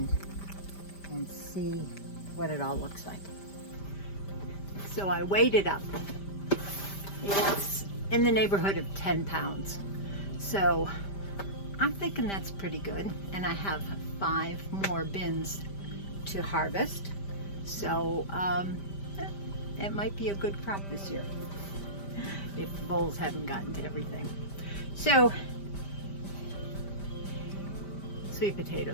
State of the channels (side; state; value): right; late; 5.1 ms